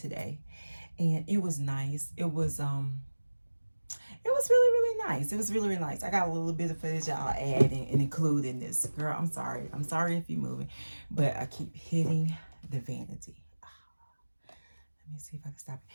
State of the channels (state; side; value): inverted; both; correlation -1.00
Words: and it was nice. It was really, really nice. It was really, really nice. I got a little bit of footage I'll add and include in this. Girl, I'm sorry. I'm sorry if you're moving, but I keep hitting the vanity. Let me see if I can stop